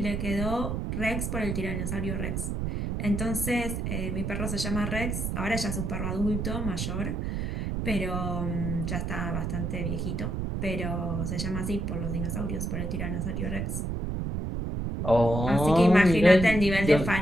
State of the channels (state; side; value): noise; right; rumble, 2 dB below the sound